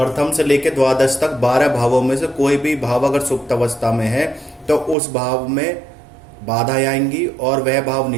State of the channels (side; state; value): left; drops out; at 5.0 s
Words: से लेकर द्वादश तक 12 भावों में से कोई भी भाव अगर सुप्त अवस्था में है तो उस भाव में बाधा आएंगी और वह भाव